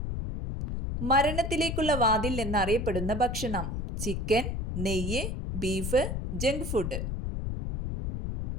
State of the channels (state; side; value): noise; left; rumble, 3 dB below the sound